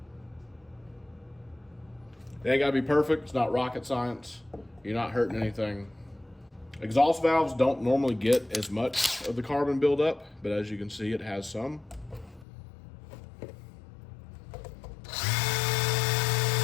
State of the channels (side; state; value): right; drops out; at 12.5 s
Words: It ain't gotta be perfect. It's not rocket science. You're not hurting anything. Exhaust valves don't normally get as much of the carbon buildup, but as you can see, it has some.